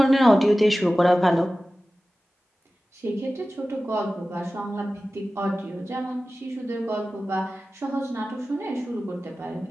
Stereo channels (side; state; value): both; normal; correlation 0.96